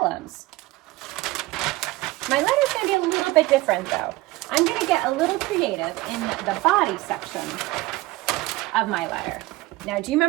My letter's going to be a little bit different, though. I'm going to get a little creative in the body section of my letter. Now, do you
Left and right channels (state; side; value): quieter; left; 19.6 dB